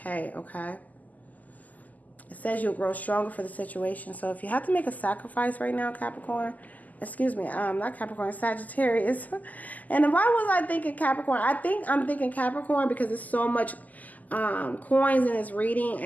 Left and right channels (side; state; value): right; late; 0.079 ms